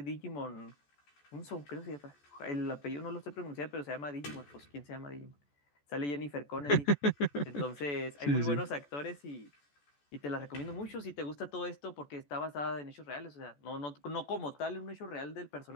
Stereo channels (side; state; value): right; late; 14 ms